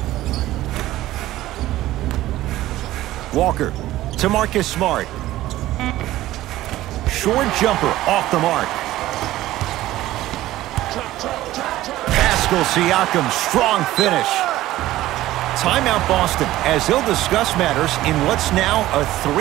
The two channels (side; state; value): left; quieter; 15.5 dB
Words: Walker to Marcus Smart. Short jumper off the mark. Pascal Siakam, strong finish. Timeout Boston as they'll discuss matters in what's now a